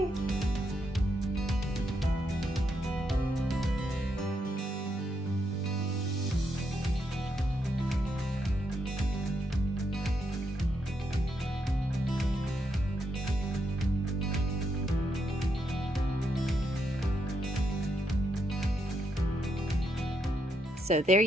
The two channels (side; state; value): both; normal; correlation 0.80